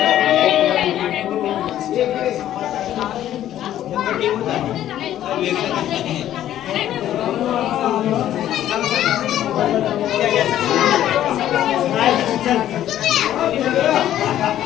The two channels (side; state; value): right; quieter; 12.1 dB